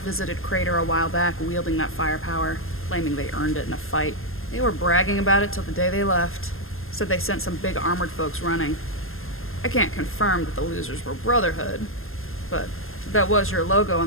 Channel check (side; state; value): right; late; 0.61 ms